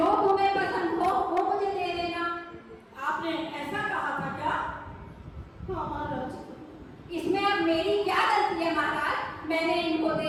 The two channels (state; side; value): identical; both; correlation 1.00